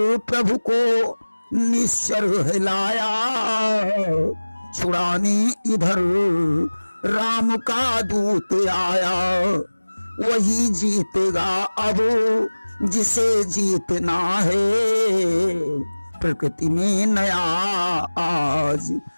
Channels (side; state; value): both; inverted; correlation -1.00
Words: प्रभु को निश्चर हिलाया, छुड़ाने इधर राम का दूत आया। वही जीतेगा अब जिसे जीतना है, प्रकृति में नया आज